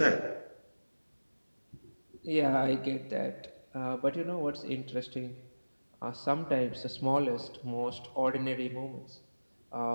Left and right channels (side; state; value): both; inverted; correlation -1.00